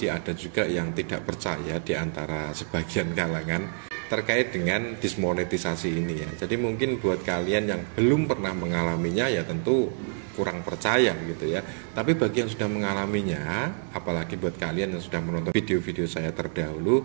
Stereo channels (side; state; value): left; silent; digital silence